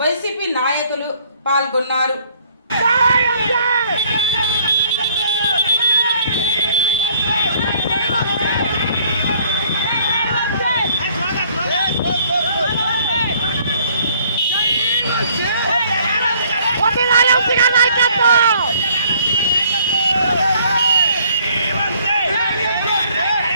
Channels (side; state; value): both; inverted; correlation -0.61